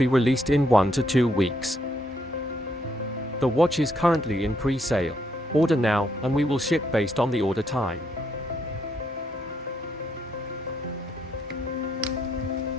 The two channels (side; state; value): both; normal; correlation 0.74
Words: released in 1 to 2 weeks. The watch is currently in pre-sale. Order now, and we will ship based on the order time.